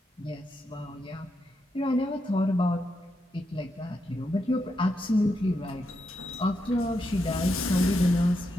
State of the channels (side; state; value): both; normal; correlation 0.83